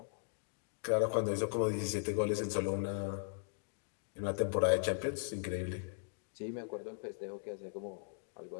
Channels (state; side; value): silent; right; digital silence